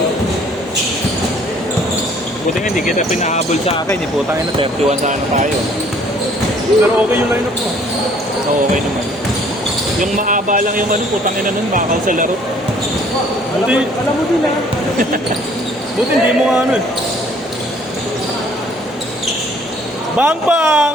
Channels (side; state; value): both; normal; correlation 0.58